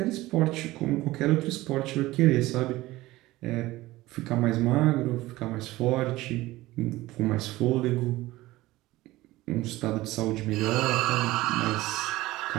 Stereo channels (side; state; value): left; quieter; 18.0 dB